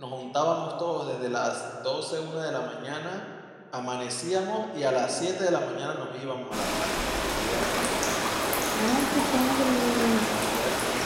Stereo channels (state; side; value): identical; both; correlation 1.00